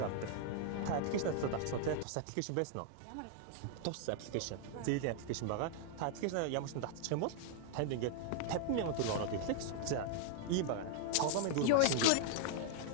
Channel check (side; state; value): both; different; correlation 0.00